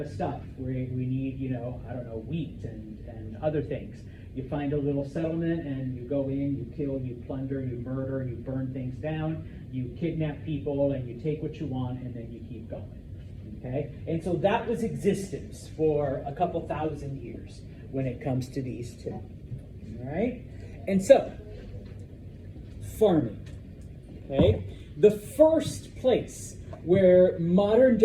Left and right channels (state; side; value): identical; both; correlation 1.00